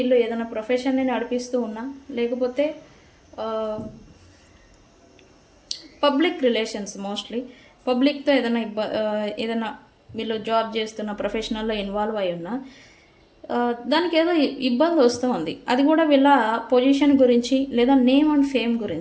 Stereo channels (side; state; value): both; identical; correlation 1.00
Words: ఏదైనా ప్రొఫెషన్ని నడిపిస్తూ ఉన్నా, లేకపోతే పబ్లిక్ రిలేషన్స్ మోస్ట్లీ పబ్లిక్తో ఏదైనా వీళ్ళు జాబ్ చేస్తున్న ప్రొఫెషనల్లో ఇన్వాల్వ్ అయి ఉన్నా, దానికి ఏదో ఇబ్బంది వస్తూ ఉంది. అది కూడా వీళ్ళ పొజిషన్ గురించి లేదా నేమ్ అండ్ ఫేమ్